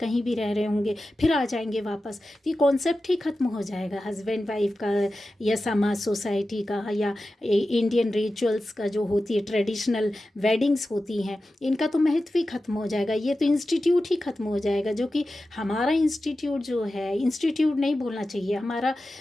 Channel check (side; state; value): both; normal; correlation 0.93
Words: भी रह रहे होंगे, फिर आ जाएंगे वापस, तो ये कॉन्सेप्ट ही ख़त्म हो जाएगा हस्बैंड वाइफ का, या समाज सोसाइटी का, या इंडियन रिचुअल्स का जो होती है ट्रेडिशनल वेडिंग्स होती हैं, इनका तो महत्व ही खत्म हो जाएगा। ये तो इंस्टीट्यूट ही खत्म हो जाएगा, जो कि हमारा इंस्टीट्यूट जो है, इंस्टीट्यूट नहीं बोलना चाहिए, हमारा